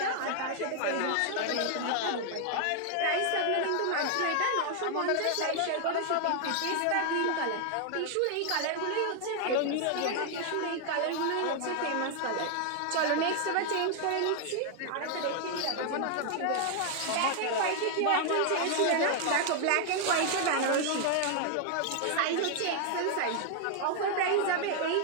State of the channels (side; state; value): both; different; correlation 0.00